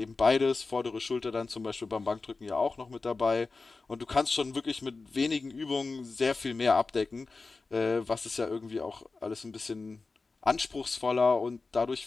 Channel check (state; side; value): quieter; right; 3.9 dB